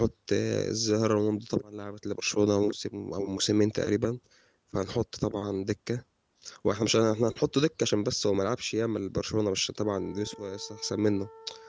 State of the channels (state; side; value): identical; both; correlation 1.00